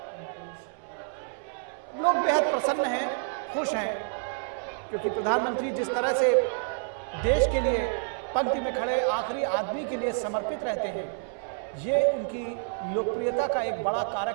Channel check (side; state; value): left; silent; 59 dB below the other